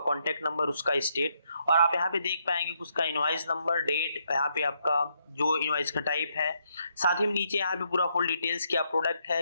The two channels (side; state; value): both; inverted; correlation -0.75